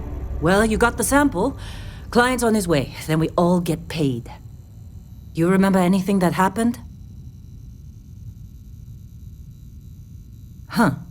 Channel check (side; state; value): both; identical; correlation 1.00